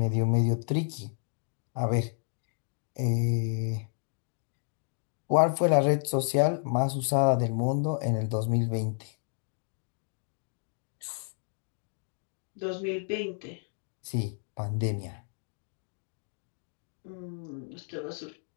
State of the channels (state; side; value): silent; right; 57 dB below the other